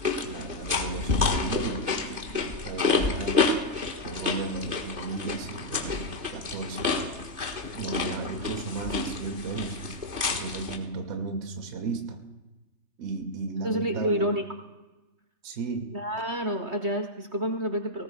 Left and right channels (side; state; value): left; late; 3.3 ms